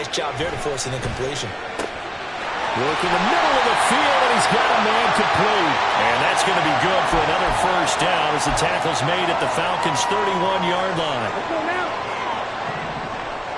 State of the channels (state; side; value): identical; both; correlation 1.00